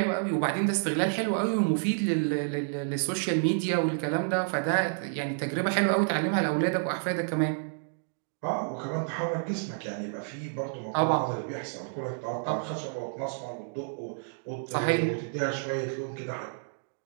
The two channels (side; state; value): left; silent; digital silence